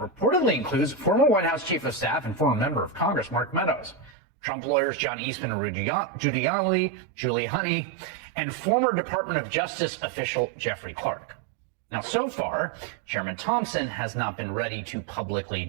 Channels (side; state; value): left; drops out; at 4.1 s